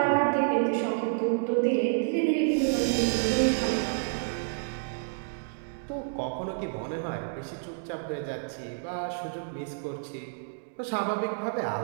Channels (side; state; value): left; silent; digital silence